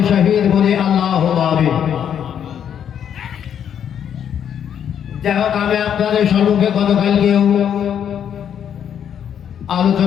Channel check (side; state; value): right; quieter; 8.9 dB